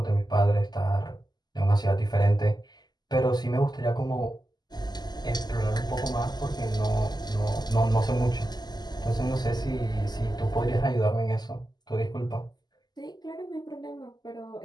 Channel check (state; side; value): late; right; 0.20 ms